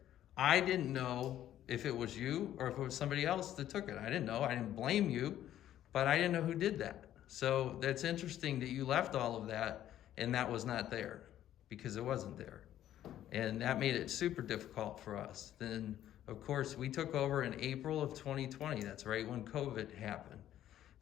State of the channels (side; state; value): right; quieter; 12.0 dB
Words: I didn't know if it was you or if it was somebody else that took it. I didn't know. I didn't blame you, but I didn't know who did that. So that's interesting that you left all of that and that was not there, because it wasn't there. And that made it super difficult for us. Then, of course, we took over in April of 2020. That's right when COVID happened.